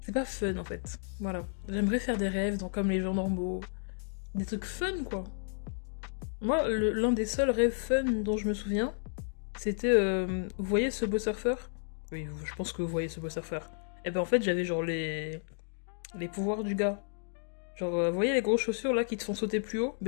C'est pas fun, en fait. Voilà. J'aimerais faire des rêves, donc comme les gens normaux. Des trucs fun, quoi. Moi, l'un des seuls rêves fun dont je me souviens, c'était... vous voyez ce beau surfeur? Oui, je pense que vous voyez ce beau surfeur. Et ben en fait, j'avais genre les pouvoirs du gars. Genre, vous voyez les grosses chaussures là qui te font sauter plus haut?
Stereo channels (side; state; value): right; silent; digital silence